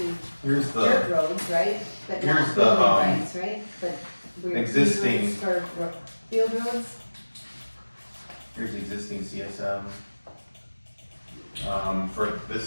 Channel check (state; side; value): inverted; both; correlation -1.00